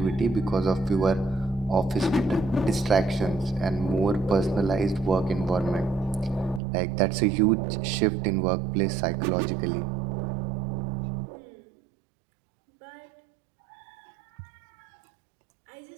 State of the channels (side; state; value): left; drops out; at 6.6 s